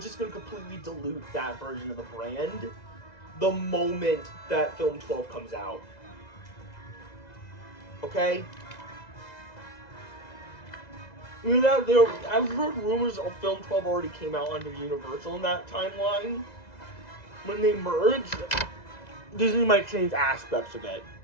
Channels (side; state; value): right; late; 2.0 ms